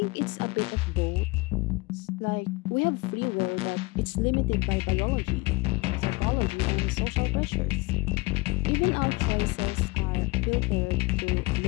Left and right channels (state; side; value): quieter; right; 23.8 dB